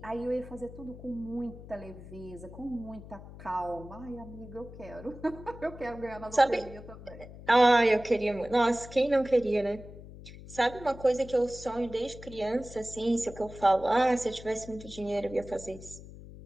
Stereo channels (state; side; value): noise; left; hum, 15 dB below the sound